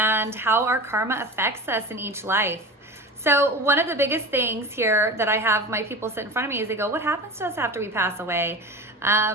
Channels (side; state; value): both; normal; correlation 0.32